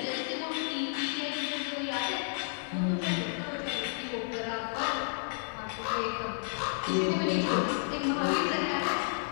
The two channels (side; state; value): right; silent; digital silence